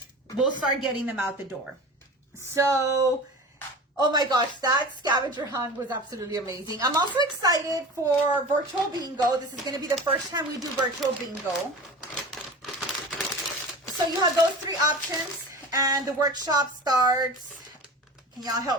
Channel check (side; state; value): both; normal; correlation 0.35